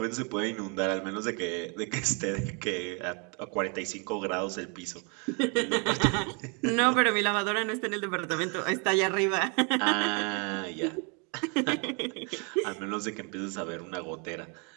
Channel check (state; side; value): quieter; left; 35.3 dB